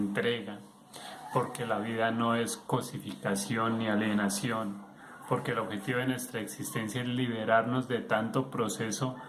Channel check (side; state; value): both; identical; correlation 1.00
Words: porque la vida no es cosificación ni alienación, porque el objetivo de nuestra existencia es liberarnos de tanto proceso